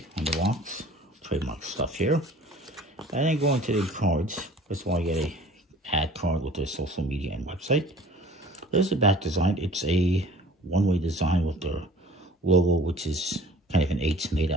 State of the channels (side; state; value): both; normal; correlation 0.48